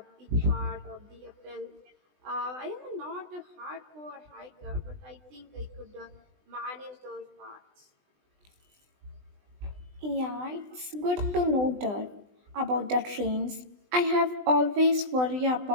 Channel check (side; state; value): left; late; 20 ms